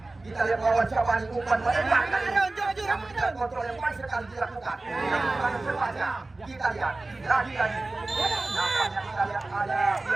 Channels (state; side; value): quieter; left; 3.1 dB